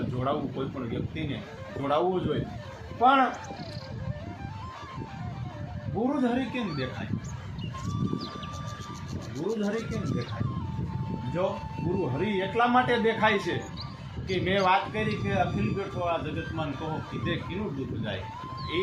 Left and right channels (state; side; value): identical; both; correlation 1.00